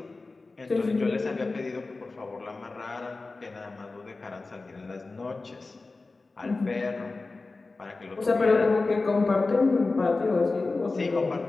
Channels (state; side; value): quieter; right; 3.6 dB